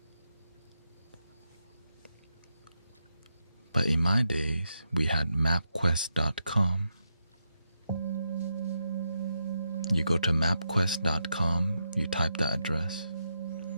But in my days, we had mapquest.com. You go to mapquest.com, you type the address.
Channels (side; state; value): both; inverted; correlation -0.84